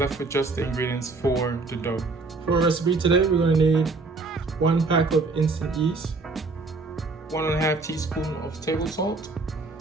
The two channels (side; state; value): left; quieter; 3.7 dB